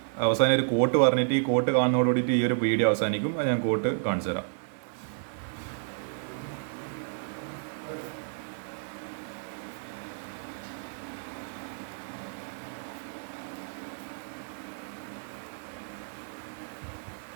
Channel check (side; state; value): left; silent; 57 dB below the other